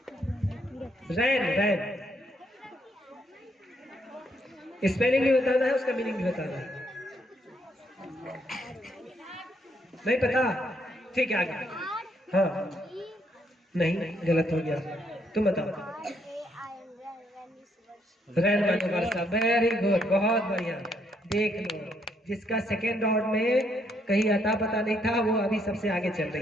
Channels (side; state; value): both; normal; correlation 0.73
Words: रैन, रैन। स्पेलिंग भी बताना है, उसका मीनिंग भी बताना है। नहीं पता? ठीक है, आगे। हाँ, नहीं, गलत हो गया। तुम बताओ। रैन माने वर्षा। वेरी गुड, बहुत बढ़िया। देख लो, जिसका सेकेंड राउंड में कहीं अता पता नहीं था, वो अभी सबसे आगे चल